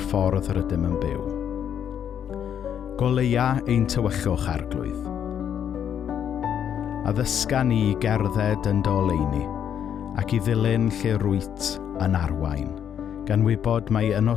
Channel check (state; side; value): quieter; right; 8.9 dB